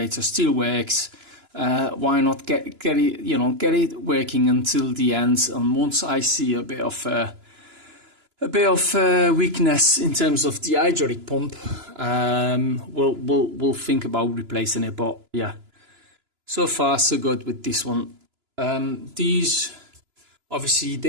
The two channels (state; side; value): late; left; 2.9 ms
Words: still works. Why not get it working until the end? And once I see a bit of weakness in terms of the hydraulic pump, we'll think about replacing it. But yeah, so far so good with this one. These obviously